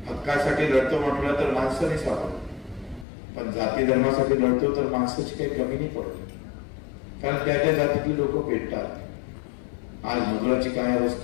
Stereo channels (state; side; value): drops out; right; at 3.1 s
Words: हक्कासाठी लढतो म्हटलं तर माणसं नाही सापडत, पण जाती धर्मासाठी लढतो तर माणसाची काही कमी नाही पडत, कारण त्या त्या जातीतली लोक पेटतात. आज मजुराची काय